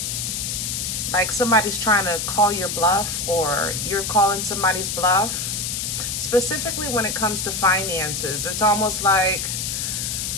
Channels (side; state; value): left; noise; hiss, 2 dB below the sound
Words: Like somebody's trying to call your bluff or you're calling somebody's bluff. Specifically when it comes to finances, it's almost like,